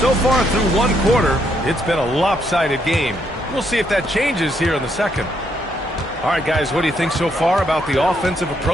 far through 1 quarter, it's been a lopsided game. We'll see if that changes here in the second. All right, guys, what do you think so far about the offensive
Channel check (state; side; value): normal; both; correlation 0.75